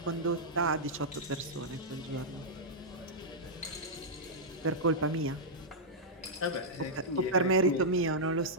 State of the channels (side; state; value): both; normal; correlation -0.09